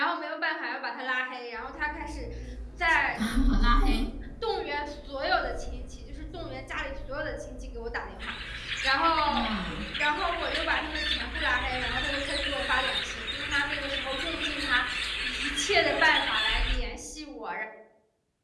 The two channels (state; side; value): identical; both; correlation 1.00